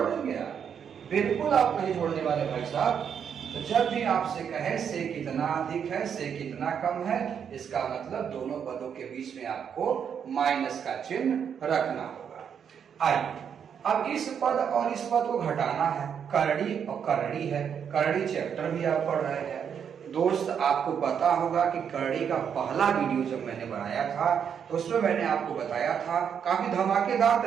आप? बिल्कुल आप नहीं जोड़ने वाले भाई साहब। तो जब भी आपसे कहे से कितना अधिक है, से कितना कम है, इसका मतलब दोनों पदों के बीच में आपको माइनस का चिन्ह रखना होगा। आइए अब इस पद और इस पद को घटाना है, करड़ी और करड़ी है, करड़ी चैप्टर भी आप पढ़ रहे हैं दोस्त। आपको पता होगा कि करड़ी का पहला वीडियो जब मैंने बनाया था तो उसमें मैंने आपको बताया था, काफी धमाकेदार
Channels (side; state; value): left; quieter; 7.7 dB